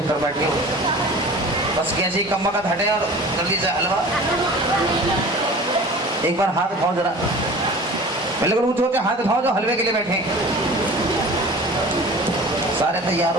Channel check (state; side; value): normal; both; correlation 0.40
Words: बैठ गए। बस कैसे कम्मा का हटे और जल्दी से हलवा। एक बार हाथ उठाओ जरा, पहले ऊंचे ऊंचे हाथ उठाओ जो हलवे के लिए बैठे। सारे तैयार